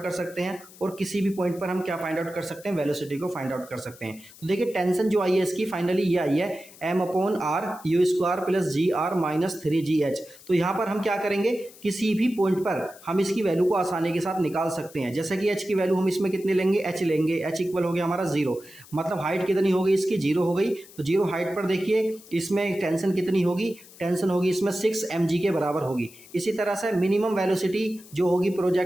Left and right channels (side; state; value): left; noise; hiss, 21 dB below the sound